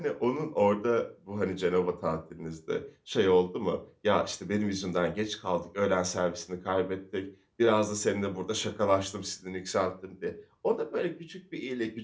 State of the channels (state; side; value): identical; both; correlation 1.00